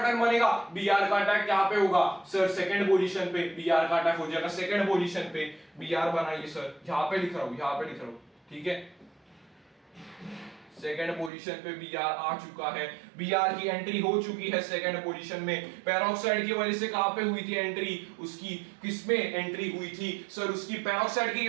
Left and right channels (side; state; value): left; drops out; at 11.3 s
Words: बनेगा, Br का अटैक यहाँ पे होगा सर, सेकंड पोजीशन पे Br का अटैक हो जाएगा, सेकंड पोजीशन पे Br बनाइए सर, यहाँ पे लिख रहा हूँ, यहाँ पे लिख रहा हूँ, ठीक है। सेकंड पोजीशन पे Br आ चुका है, Br की एंट्री हो चुकी है सेकंड पोजीशन में। पेरोक्साइड की वजह से कहां पे हुई थी एंट्री, उसकी किसमें एंट्री हुई थी सर, उसकी पेरोक्साइड की